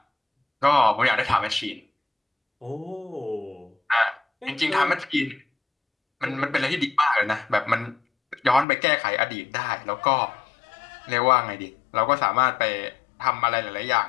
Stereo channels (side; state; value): right; drops out; at 8.7 s